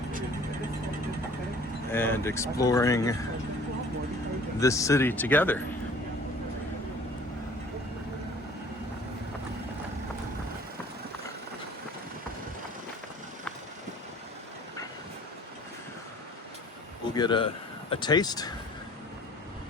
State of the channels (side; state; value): both; normal; correlation 0.50